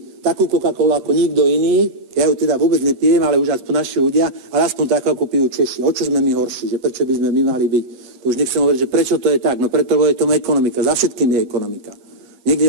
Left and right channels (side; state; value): left; late; 8.9 ms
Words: takú Coca-Colu ako nikto iný, ja ju teda vôbec nepijem, ale už aspoň naši ľudia, ale aspoň takú, ako pijú Češi. O čo sme my horší, že prečo by sme my mali byť? To už nechcem hovoriť, že prečo to je tak, no preto, lebo je tomu ekonomika, za všetkým je ekonomika. Niekde